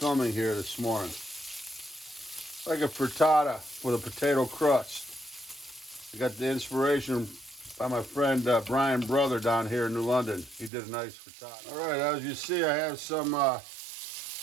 here this morning. Like a frittata with a potato crust. I got the inspiration by my friend Brian Brother down here in New London. He did a nice frittata. All right, as you see, I have some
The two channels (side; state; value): left; drops out; at 10.7 s